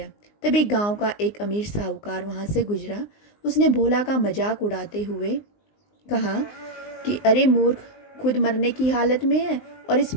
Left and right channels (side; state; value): right; late; 19 ms